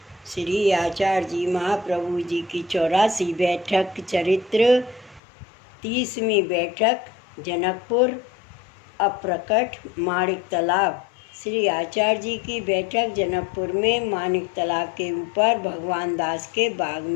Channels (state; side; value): drops out; right; at 5.2 s